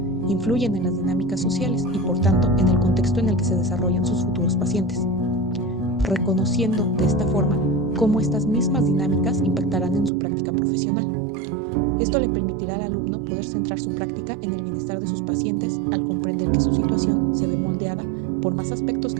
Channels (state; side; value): drops out; left; at 10.1 s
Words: influyen en las dinámicas sociales y, por tanto, en el contexto en el que se desarrollan sus futuros pacientes, reconociendo de esta forma cómo estas mismas dinámicas impactarán en su práctica profesional. Esto le permitirá al alumno poder centrar su práctica en el bienestar de sus pacientes al comprender que su situación se ve moldeada por más aspectos